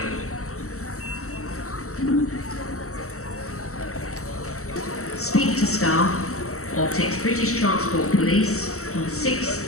Speak to staff or text British Transport Police on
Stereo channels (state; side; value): late; right; 0.64 ms